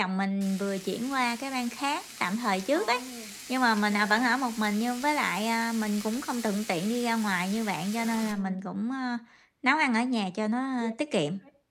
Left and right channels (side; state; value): both; identical; correlation 1.00